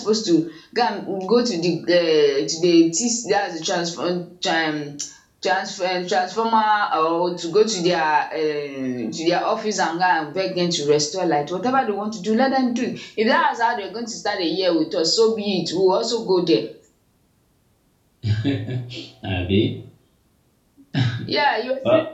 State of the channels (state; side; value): identical; both; correlation 1.00